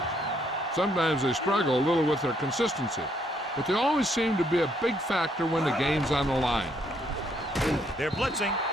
Sometimes they struggle a little with their consistency, but they always seem to be a big factor when the game's on the line. They're blitzing,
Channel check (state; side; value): normal; both; correlation 0.70